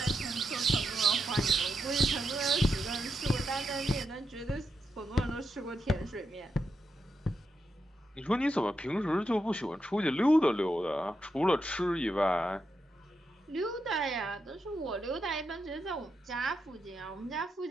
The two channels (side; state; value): both; normal; correlation 0.85